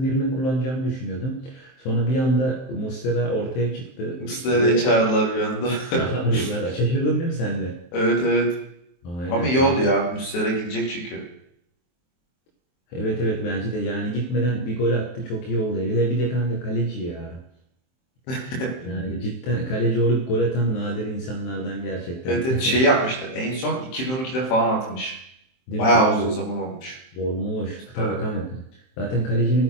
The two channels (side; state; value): right; late; 23 ms